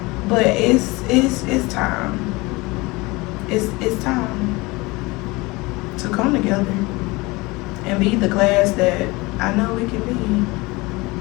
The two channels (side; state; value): right; quieter; 23.4 dB